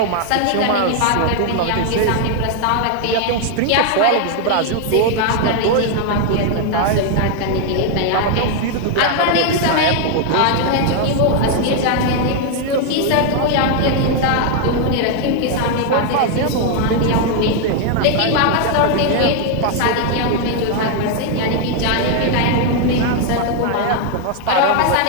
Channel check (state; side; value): different; both; correlation 0.00